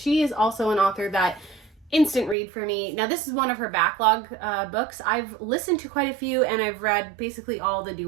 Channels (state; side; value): drops out; left; at 2.4 s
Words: is also an author that instant read for me. Now, this is one of her backlog books. I've listened to quite a few, and I've read basically all the